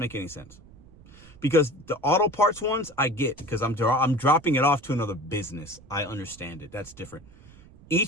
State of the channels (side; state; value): right; noise; rumble, 23 dB below the sound